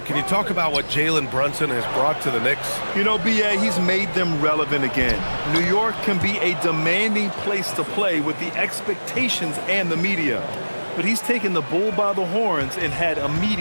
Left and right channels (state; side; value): inverted; both; correlation -1.00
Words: can you talk about what Jalen Brunson has brought to the Knicks? You know, B.A., he's made them relevant again. New York can be a demanding place to play with the expectations and the media. But he's taken the bull by the horns and had